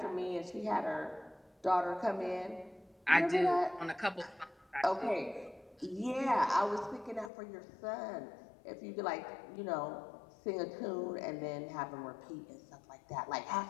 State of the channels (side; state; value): right; drops out; at 7.3 s